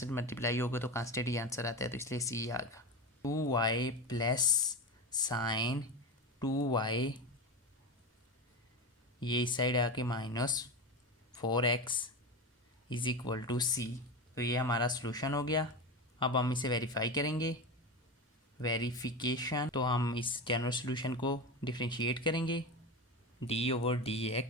मल्टीप्लाई होगा तो कांस्टेंट ही आंसर आता है, तो इसलिए सी आ गया। 2y प्लस साइन 2y, ये इस साइड आके minus 4x is equal to C. तो ये हमारा सोल्यूशन हो गया। अब हम इसे वेरीफाई करेंगे, वेरिफिकेशन। तो हम इस जनरल सोल्यूशन को डिफ्रेंशिएट करेंगे,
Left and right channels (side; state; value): both; normal; correlation 0.23